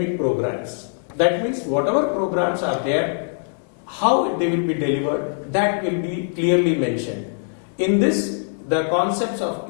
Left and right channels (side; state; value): right; silent; digital silence